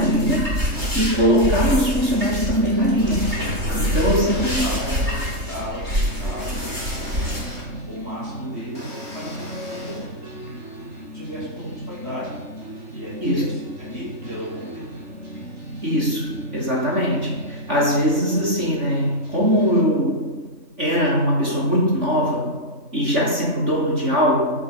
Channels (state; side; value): late; left; 3.5 ms